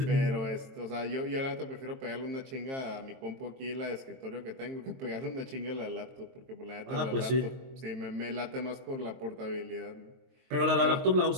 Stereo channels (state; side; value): late; left; 22 ms